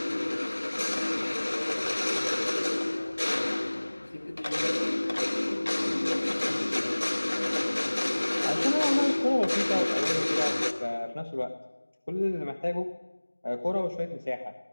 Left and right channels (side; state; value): both; inverted; correlation -1.00